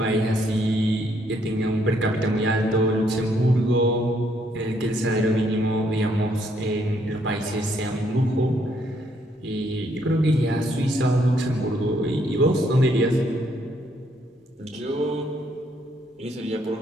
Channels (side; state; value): both; normal; correlation 0.70